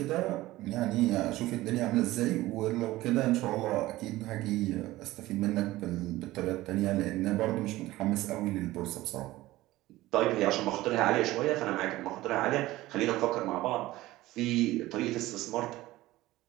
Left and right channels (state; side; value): quieter; left; 17.4 dB